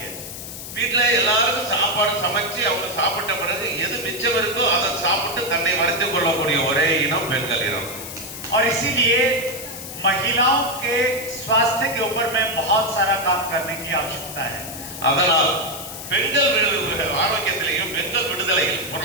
है. வீட்டுல எல்லாருக்கும் சாப்பாடு சமைச்சு அவங்க சாப்பிட்ட பிறகு எது மிச்சம் இருக்கோ அதை சாப்பிட்டு தன்னை வளர்த்துக் கொள்ளக்கூடிய ஒரே இனம் பெண்கள் இனம். और इसीलिए महिलाओं के स्वास्थ्य के ऊपर में बहुत सारा काम करने की आवश्यकता है. அதனால் பெண்கள் ஆரோக்கியத்திலையும் பெண்கள் விடுதலையில்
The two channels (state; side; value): noise; left; hiss, 10 dB below the sound